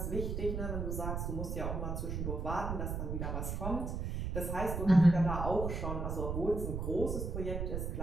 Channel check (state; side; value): noise; right; rumble, 3 dB below the sound